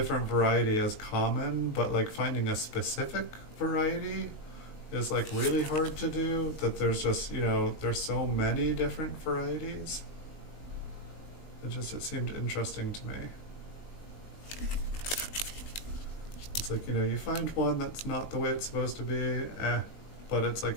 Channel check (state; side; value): late; right; 19 ms